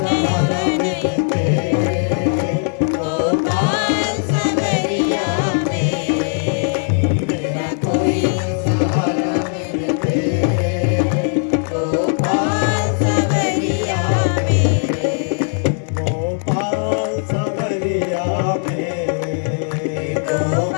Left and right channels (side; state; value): right; silent; 58 dB below the other